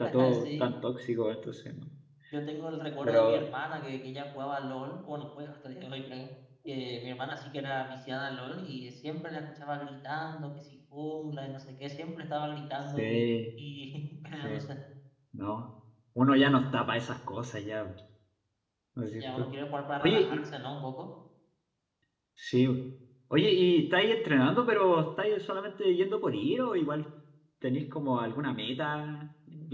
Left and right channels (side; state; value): both; identical; correlation 1.00